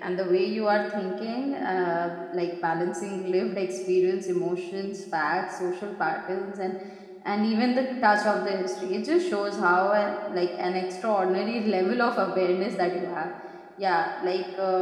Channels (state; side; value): identical; both; correlation 1.00